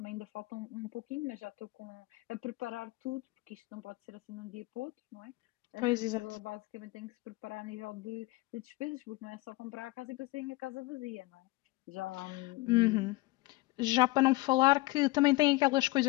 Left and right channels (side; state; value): right; quieter; 21.3 dB